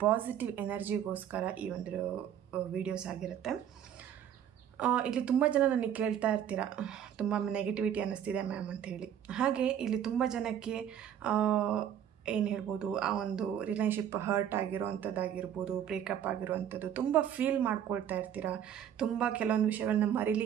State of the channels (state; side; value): quieter; left; 9.7 dB